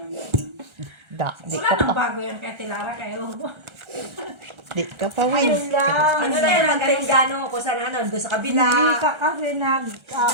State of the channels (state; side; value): late; left; 1.4 ms